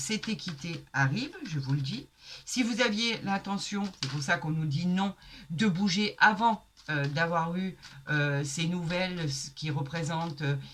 équité arrive, je vous le dis. Si vous aviez l'intention, c'est pour ça qu'on nous dit non, de bouger avant d'avoir eu ces nouvelles qui représentent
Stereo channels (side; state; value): both; identical; correlation 1.00